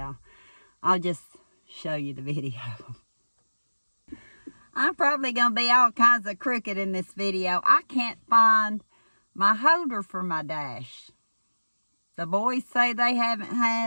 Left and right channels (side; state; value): both; inverted; correlation -1.00